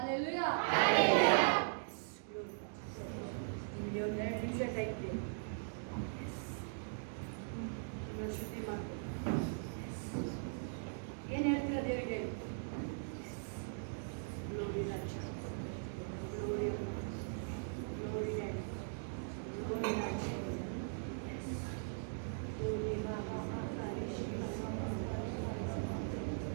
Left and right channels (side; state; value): left; silent; digital silence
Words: ನಿಮಗೆ ಒಂದು 2 ನಿಮಿಷ ಟೈಮ್ ಇದೆ. ಶುದ್ಧಿ ಮಾಡ್ತೀನಿ. ಏನು ಹೇಳ್ತೀರಾ ದೇವರಿಗೆ? ಗ್ಲೋರಿ ರಾಜ, ಗ್ಲೋರಿ, ಗ್ಲೋರಿ ಡ್ಯಾಡಿ, ಗ್ಲೋರಿ ರಾಜ, ಗ್ಲೋರಿ ಬಾಬಾ, ಮಾತಾರಿ ಶಿವ,